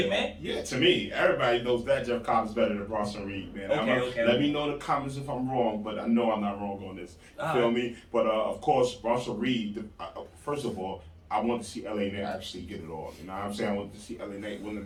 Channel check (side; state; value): both; identical; correlation 1.00